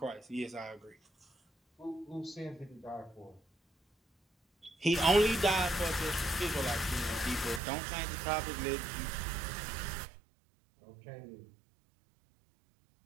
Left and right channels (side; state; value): left; drops out; at 7.6 s